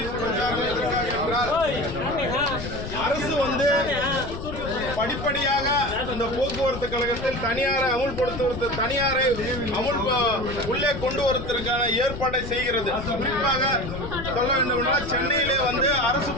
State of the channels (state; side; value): noise; left; rumble, 9 dB below the sound